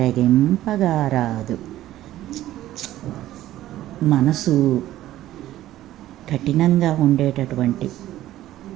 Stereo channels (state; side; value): quieter; left; 14.2 dB